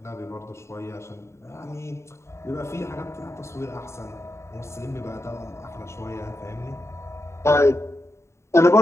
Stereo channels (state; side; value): late; right; 0.13 ms